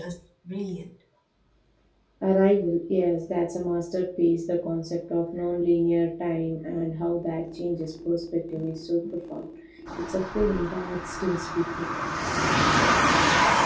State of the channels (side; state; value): both; identical; correlation 1.00